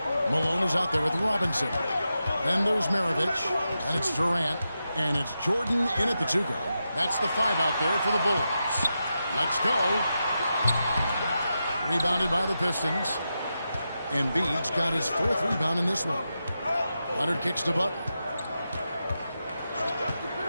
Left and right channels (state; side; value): inverted; both; correlation -0.89